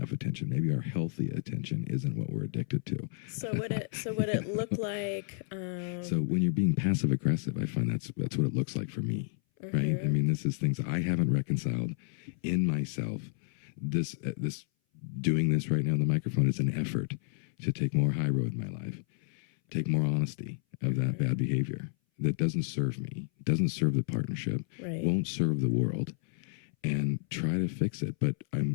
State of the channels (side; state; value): right; silent; 57 dB below the other